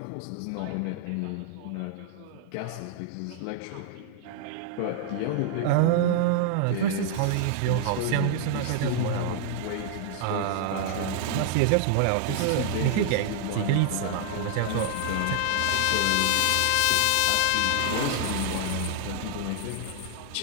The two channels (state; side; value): different; both; correlation 0.00